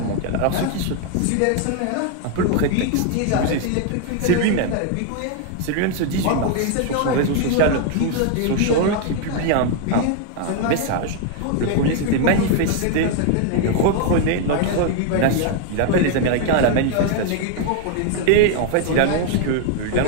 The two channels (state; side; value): different; both; correlation 0.00